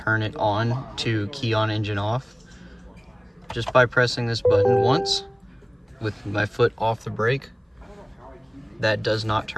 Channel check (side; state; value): both; identical; correlation 1.00